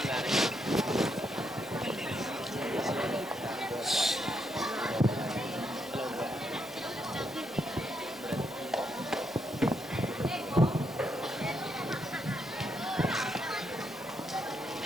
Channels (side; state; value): both; normal; correlation 0.78